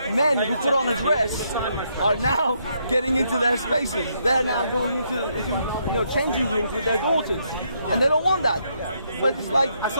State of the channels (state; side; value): inverted; both; correlation -0.75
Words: men who put on a dress are now getting into their spaces. They're now going into changing rooms with their daughters. And they don't want that. But it's like... I